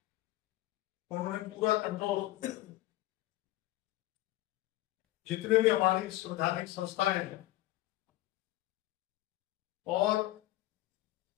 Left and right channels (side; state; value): right; quieter; 16.6 dB